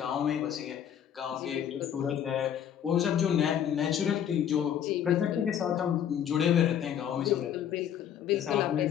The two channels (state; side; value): quieter; right; 9.5 dB